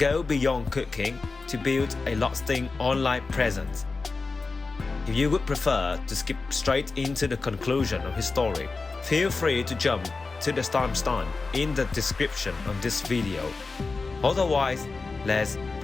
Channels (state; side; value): quieter; right; 4.0 dB